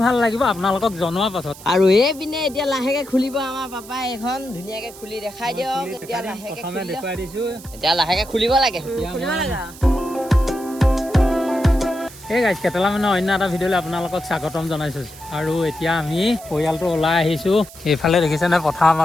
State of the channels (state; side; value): noise; right; hiss, 18 dB below the sound